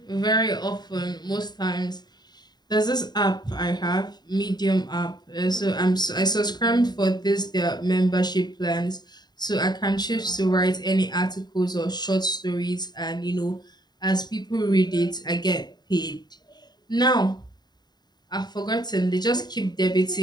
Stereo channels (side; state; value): right; late; 0.20 ms